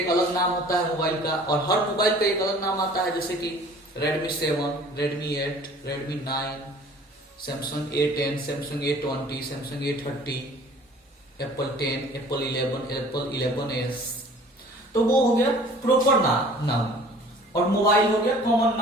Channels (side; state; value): both; normal; correlation 0.49